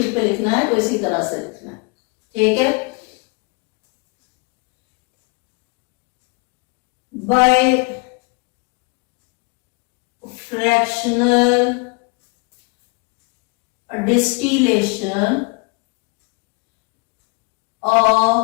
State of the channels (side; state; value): right; quieter; 31.4 dB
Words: पे लिखना है तो इसी तरह से लिखना है, ठीक है। By fractional distillation